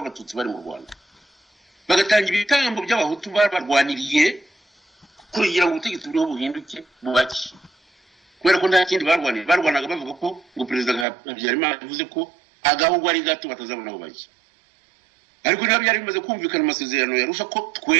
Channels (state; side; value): drops out; left; at 11.1 s